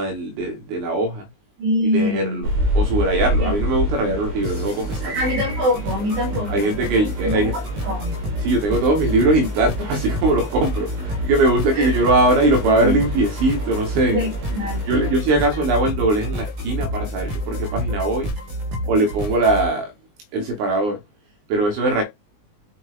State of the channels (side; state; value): left; late; 19 ms